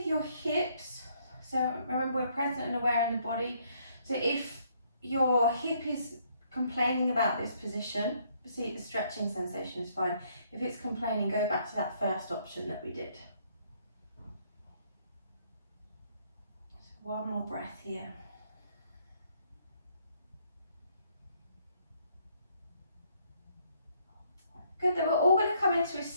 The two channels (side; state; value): both; inverted; correlation -0.68